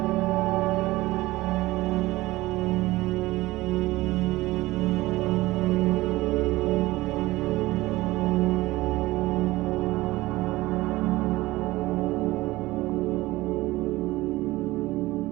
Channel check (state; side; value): quieter; left; 18.8 dB